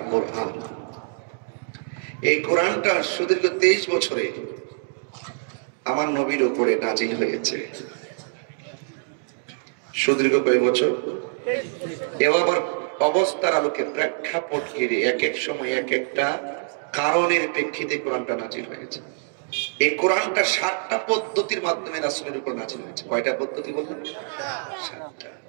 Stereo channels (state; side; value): silent; left; digital silence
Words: কোরআন। এই কোরআনটা সুদীর্ঘ 23 বছরে আমার নবীর উপরে নাজিল হয়েছে। সুদীর্ঘ কয় বছর? এবার অবস্থার আলোকে প্রেক্ষাপট ঘিরে এক এক সময় এক একটা কারণের প্রেক্ষিতে কোরআনটা নাজিল হয়েছে। এই কোরআনটা 7টা পদ্ধতির মাধ্যমে রাসূলের উপর নাজিল হয়েছে। কয়টা পদ্ধতি বললেন? 7টা।